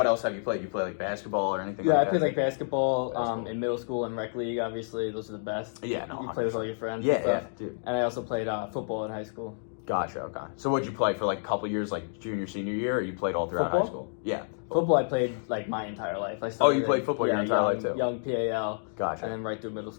else have you played? You play like basketball or anything? Yeah, like I played that? like basketball Basketball. in middle school and rec league. Obviously, those are the best. Yeah, no, You play with all your friends. Yeah, and stuff. yeah, dude. And I also played football in high school. Gotcha. Okay. So what'd you play for like a couple years, like junior, senior year, or you played all throughout Football? high school? Yeah. Football, I played like my entire life. I Oh, started you played football your entire life too. Young PAL, Gotcha. and then right through middle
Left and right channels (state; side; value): silent; right; digital silence